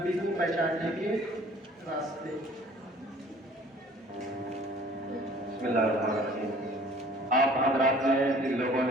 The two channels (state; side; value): normal; both; correlation 0.52